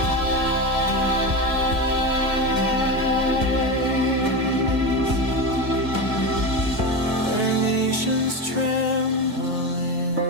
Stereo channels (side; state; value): left; late; 2.0 ms